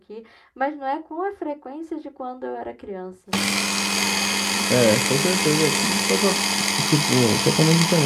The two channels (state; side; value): identical; both; correlation 1.00